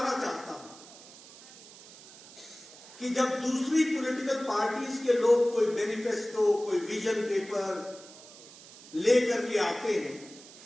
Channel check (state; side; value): noise; right; hiss, 19 dB below the sound